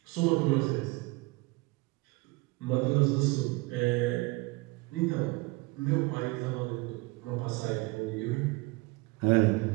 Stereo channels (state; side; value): quieter; left; 24.3 dB